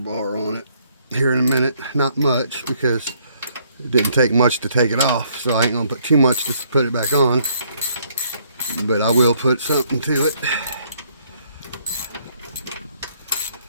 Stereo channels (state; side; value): inverted; both; correlation -0.67